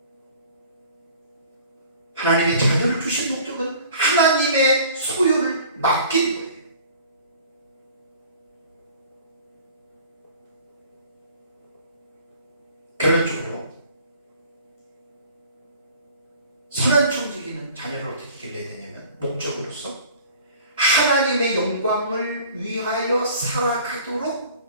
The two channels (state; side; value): inverted; both; correlation -0.48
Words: 하나님의 자녀를 주신 목적은 하나님의 소유를 맡긴 거예요. 결론적으로 선한 청지기는 자녀를 어떻게 길러야 되냐면 목적으로서 하나님의 영광을 위하여